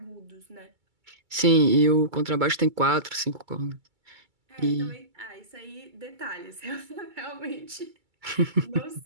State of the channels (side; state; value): left; late; 2.3 ms